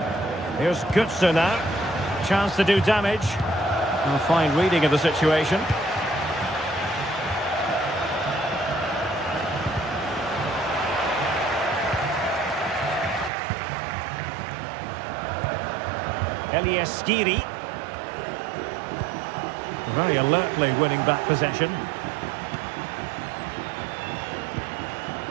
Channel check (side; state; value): left; drops out; at 13.3 s